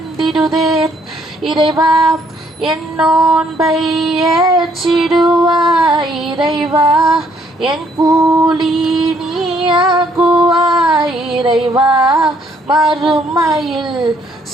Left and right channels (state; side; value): normal; both; correlation 0.67